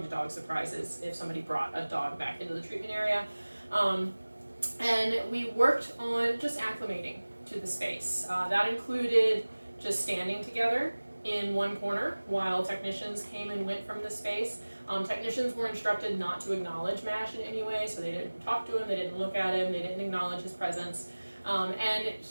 surprises if somebody brought a dog back into the treatment area. And we worked on just acclimating to the space. That included just standing together in one corner while technicians came and went from the space. Technicians were instructed not to acknowledge Mash in any way, so they didn't talk to him, they didn't look at him, they didn't acknowledge his presence. And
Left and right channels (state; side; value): inverted; both; correlation -1.00